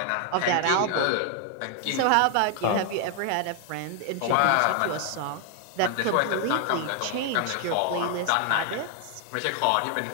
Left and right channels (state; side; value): different; both; correlation 0.00